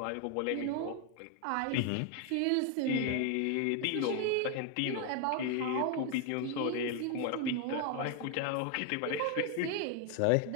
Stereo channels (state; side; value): different; both; correlation 0.01